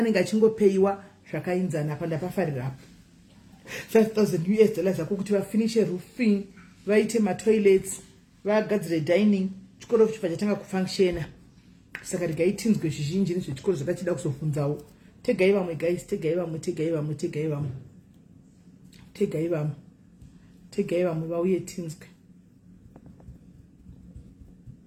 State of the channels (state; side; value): identical; both; correlation 1.00